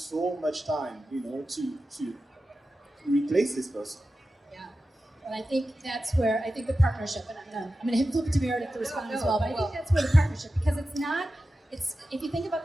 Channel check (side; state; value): both; normal; correlation 0.93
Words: much time, to replace this person. Yeah, and I think that's where the partnership, and I'm gonna flip to Meredith to respond as well, but I think that's where the partnership, because it's if you think about